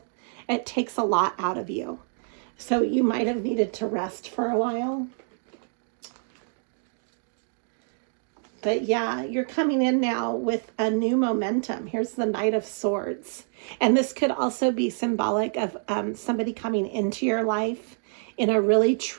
It takes a lot out of you. So you might have needed to rest for a while. But yeah, you're coming in now with a new momentum. Here's the Knight of Swords. And this could also be symbolic of somebody coming into your life in a really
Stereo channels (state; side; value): silent; left; 58 dB below the other